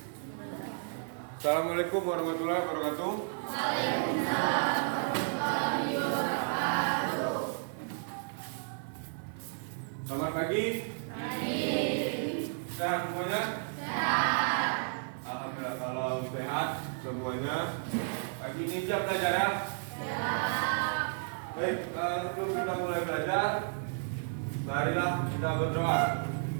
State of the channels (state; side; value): silent; left; digital silence